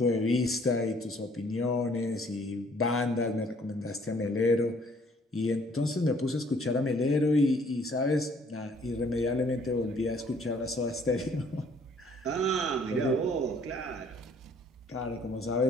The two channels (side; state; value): both; normal; correlation 0.60